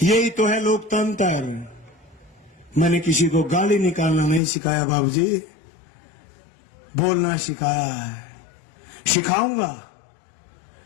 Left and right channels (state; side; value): drops out; right; at 4.4 s